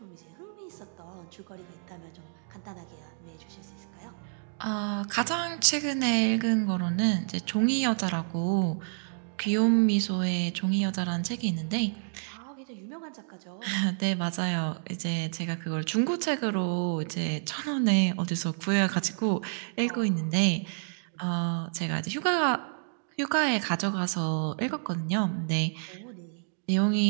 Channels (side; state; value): left; silent; digital silence